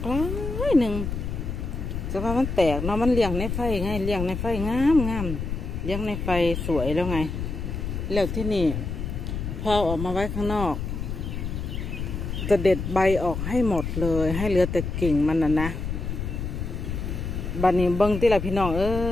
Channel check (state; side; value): noise; left; rumble, 4 dB below the sound